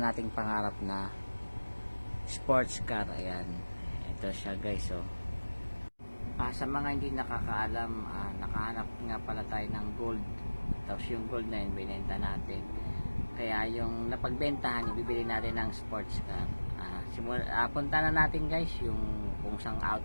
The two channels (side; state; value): both; inverted; correlation -1.00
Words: nating pangarap na sports car. Ayan, ito siya guys. Oh. Sa mga hindi nakakaalam, nakahanap nga pala tayo ng gold. Tapos yung gold na yun, binenta natin. Kaya yung napagbentahan, ibibili natin ng sports car. Punta na natin guys yung kung sang